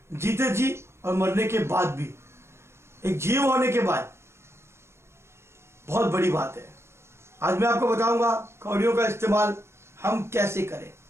जीते जी और मरने के बाद भी। एक जीव होने के बाद बहुत बड़ी बात है। आज मैं आपको बताऊंगा कौड़ियों का इस्तेमाल हम कैसे करें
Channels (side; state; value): left; late; 0.13 ms